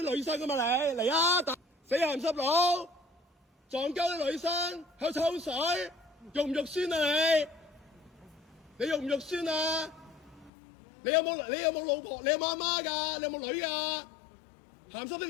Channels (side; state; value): right; drops out; at 10.5 s